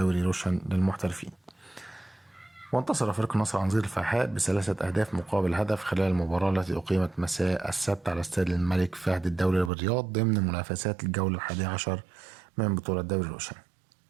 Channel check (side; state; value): left; drops out; at 9.7 s